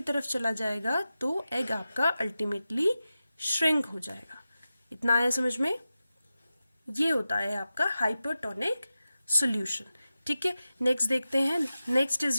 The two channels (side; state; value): both; inverted; correlation -0.93